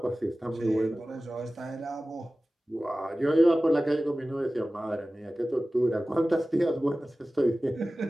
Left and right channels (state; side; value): normal; both; correlation 0.96